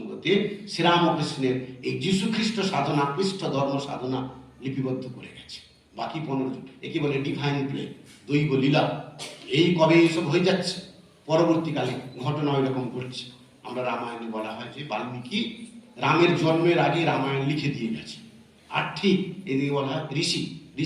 শ্রীরামকৃষ্ণের এই যীশু খ্রিস্ট সাধনা, খ্রিস্ট ধর্ম সাধনা লিপিবদ্ধ করে গেছে। বাকি 15 জন, একে বলে ডিভাইন প্লে, দৈব লীলা। এই কবে এইসব হয়ে যাচ্ছে, পরবর্তীকালে ঘটনা ওই রকম ঘটছে। আমরা রামায়ণে বলা হয় যে বাল্মীকি রামের জন্মের আগে রামায়ণ লিখে দিয়ে গেছে। আর ঠিক এদিকে বলা হয় ঋষি,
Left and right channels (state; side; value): identical; both; correlation 1.00